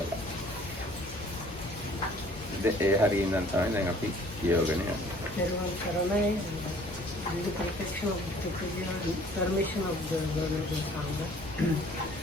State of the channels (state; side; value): normal; both; correlation 0.54